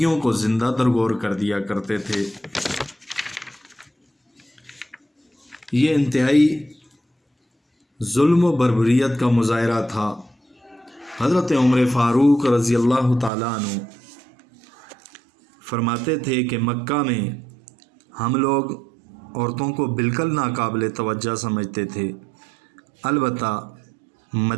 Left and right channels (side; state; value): left; drops out; at 13.3 s